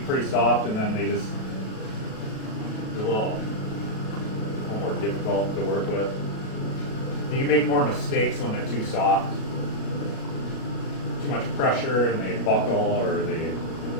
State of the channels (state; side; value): late; right; 37 ms